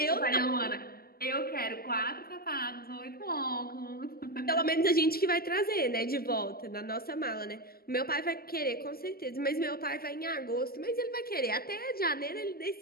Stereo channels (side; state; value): right; late; 0.44 ms